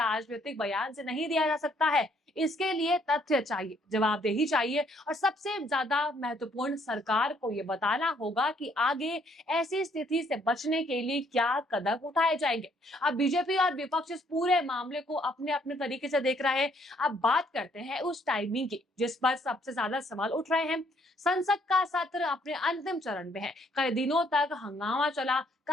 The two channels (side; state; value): both; normal; correlation 0.67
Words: बयान से नहीं दिया जा सकता है, इसके लिए तथ्य चाहिए, जवाबदेही चाहिए और सबसे ज्यादा महत्वपूर्ण, सरकार को यह बताना होगा कि आगे ऐसी स्थिति से बचने के लिए क्या कदम उठाए जाएंगे। अब बीजेपी और विपक्ष इस पूरे मामले को अपने अपने तरीके से देख रहे हैं। अब बात करते हैं उस टाइमिंग की जिस पर सबसे ज्यादा सवाल उठ रहे हैं। संसद का सत्र अपने अंतिम चरण में है। कई दिनों तक हंगामा चला,